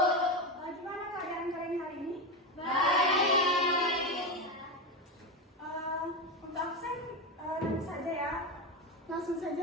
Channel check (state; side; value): normal; both; correlation 0.15